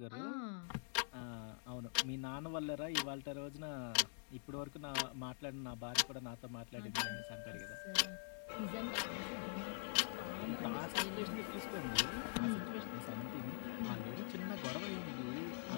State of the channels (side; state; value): right; silent; digital silence